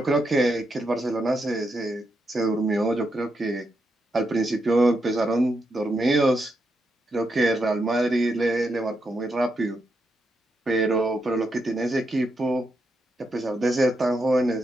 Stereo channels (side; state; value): both; normal; correlation 0.83